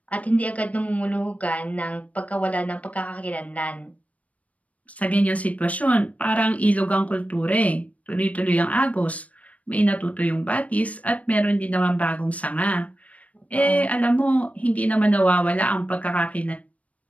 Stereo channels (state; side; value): late; right; 0.067 ms